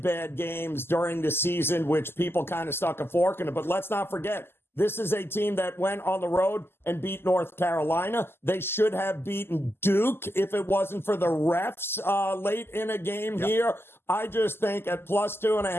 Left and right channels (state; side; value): late; right; 0.12 ms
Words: games during the season, which people kind of stuck a fork in it. But let's not forget, this is a team that went on the road and beat North Carolina. They should have beaten Duke if it wasn't for the refs late in a game here. I just think at plus